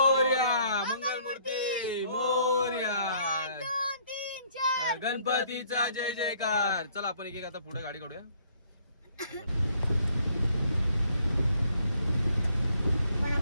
मंगलमूर्ती मोरया. गणपतीचा जय जयकार. चला आपण एक एक आता पुढे गाडी काढूया.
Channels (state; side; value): inverted; both; correlation -0.63